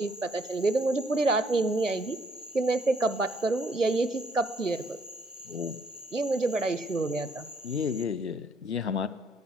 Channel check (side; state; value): both; normal; correlation 0.67